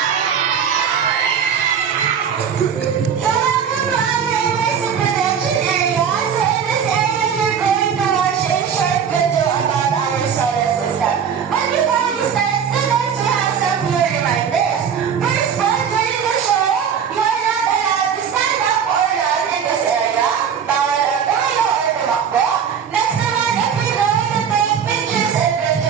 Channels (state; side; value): quieter; left; 7.5 dB